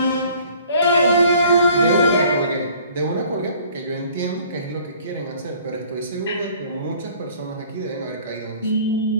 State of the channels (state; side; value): inverted; both; correlation -0.54